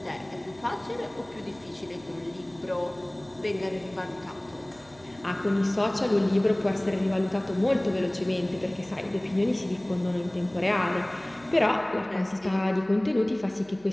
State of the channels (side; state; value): right; noise; hum, 25 dB below the sound